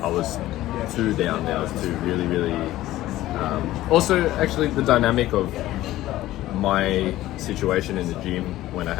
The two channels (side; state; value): right; quieter; 15.4 dB